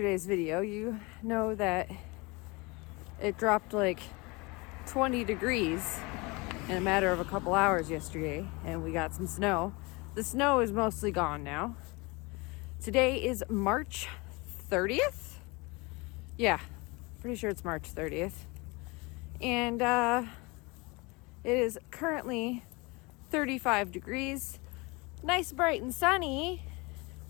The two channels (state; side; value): quieter; right; 26.1 dB